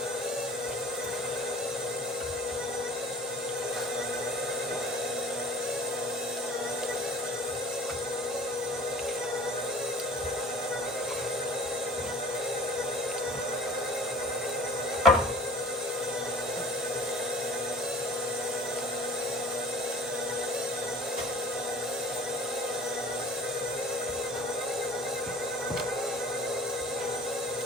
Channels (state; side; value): normal; both; correlation 0.46